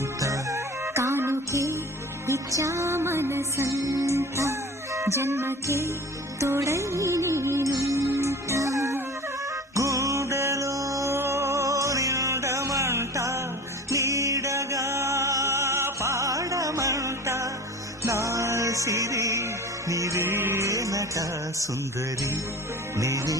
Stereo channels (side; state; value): both; normal; correlation 0.38